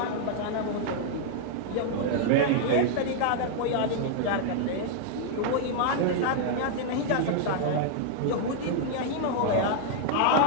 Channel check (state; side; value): different; both; correlation -0.01